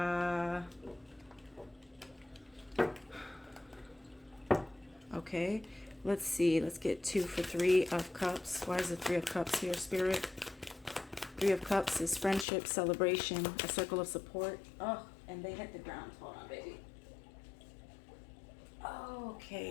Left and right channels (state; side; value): drops out; right; at 12.5 s